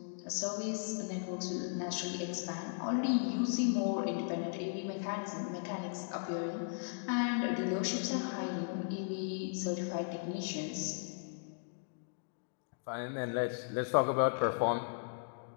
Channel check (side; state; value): right; silent; digital silence